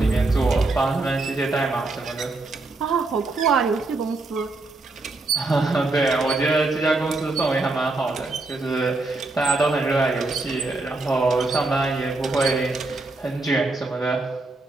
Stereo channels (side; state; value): left; quieter; 3.2 dB